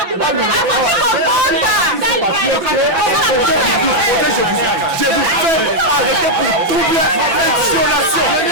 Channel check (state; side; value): late; left; 5.9 ms